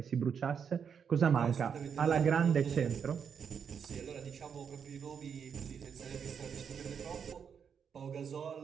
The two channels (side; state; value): left; quieter; 7.1 dB